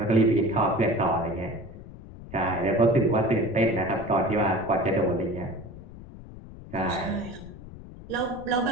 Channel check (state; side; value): noise; left; rumble, 16 dB below the sound